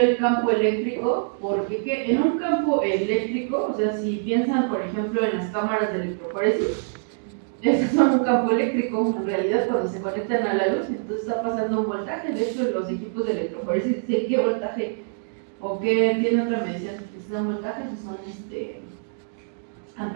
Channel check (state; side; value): silent; left; digital silence